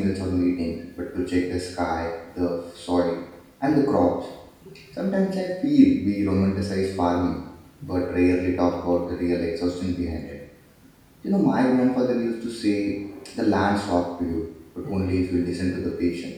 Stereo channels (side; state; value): both; identical; correlation 1.00